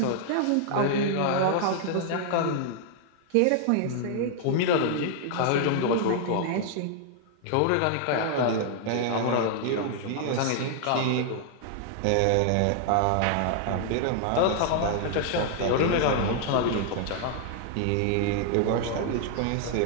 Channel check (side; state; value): both; different; correlation 0.00